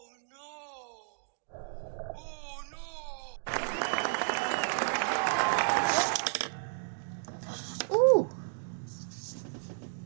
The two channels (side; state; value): left; silent; digital silence